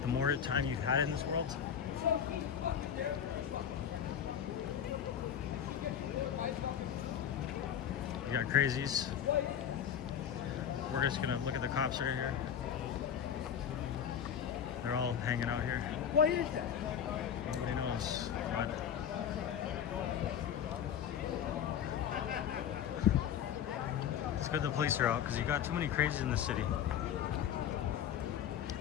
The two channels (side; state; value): right; quieter; 8.8 dB